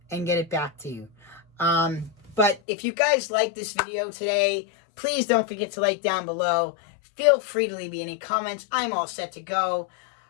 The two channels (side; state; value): right; drops out; at 2.6 s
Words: and get it back to you. But if you guys like this video today, please don't forget to like down below. Feel free to leave me any comments. I'm all set to go.